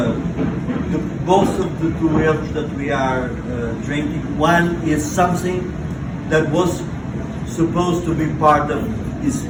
both of the two erros that we are drinking, one is something that was supposed to be part of his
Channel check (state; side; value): identical; both; correlation 1.00